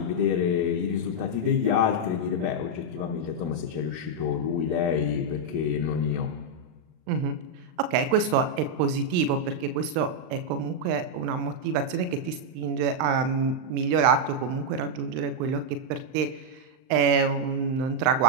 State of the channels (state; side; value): late; left; 39 ms